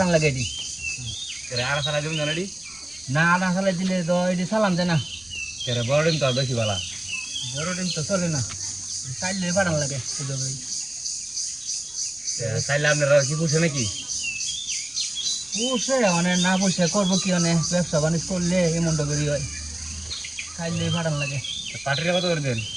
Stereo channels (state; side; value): noise; right; rumble, 27 dB below the sound